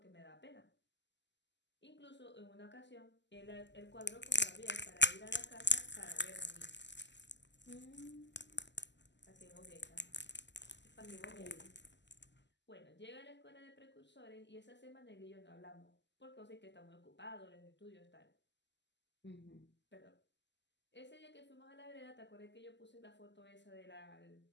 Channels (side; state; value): right; late; 0.51 ms